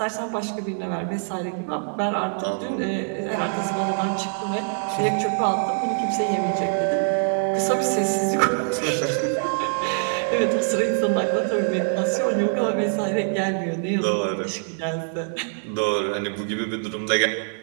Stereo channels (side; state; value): left; silent; digital silence